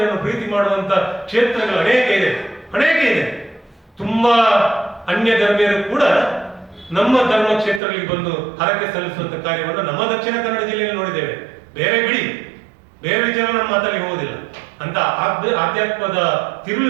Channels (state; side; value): drops out; left; at 7.8 s